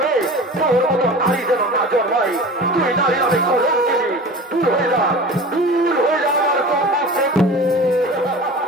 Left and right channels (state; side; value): normal; both; correlation 0.37